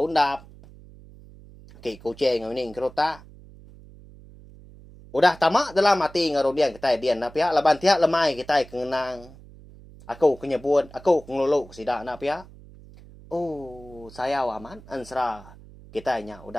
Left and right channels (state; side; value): noise; right; hum, 20 dB below the sound